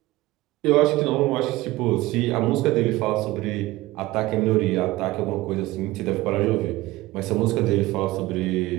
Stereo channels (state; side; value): quieter; left; 18.5 dB